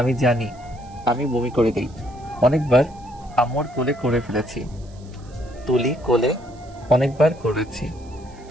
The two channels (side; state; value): right; noise; hiss, 28 dB below the sound